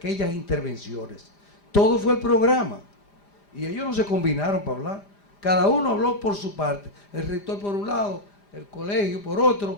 intervenciones. Todo fue el programa. Y ellos no se combinaron para hablar. Cada uno habló por su parte. El rector por un lado, el colegio por otro,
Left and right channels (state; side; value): late; right; 5.0 ms